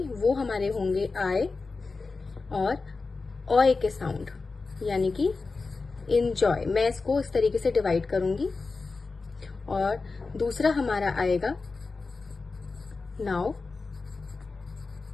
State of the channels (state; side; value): quieter; right; 4.1 dB